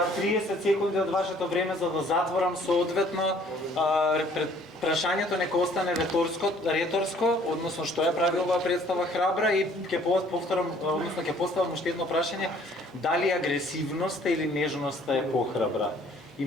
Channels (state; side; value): normal; both; correlation 0.58